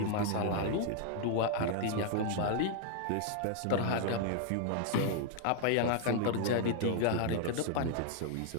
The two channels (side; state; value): both; different; correlation 0.00